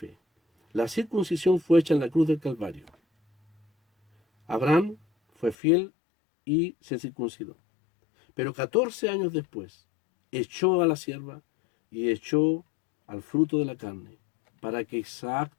La circuncisión fue hecha en la cruz del Calvario. Abraham fue fiel y se circuncidó. Pero 14 años después, echó a la sierva y echó al fruto de la carne, para que Isaac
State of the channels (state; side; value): drops out; right; at 5.6 s